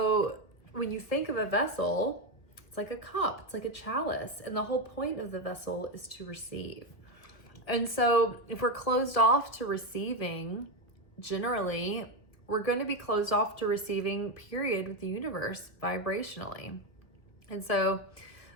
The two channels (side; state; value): right; late; 2.0 ms